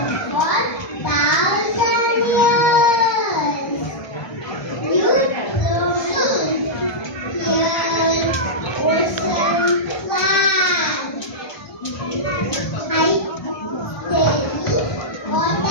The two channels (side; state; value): right; late; 1.2 ms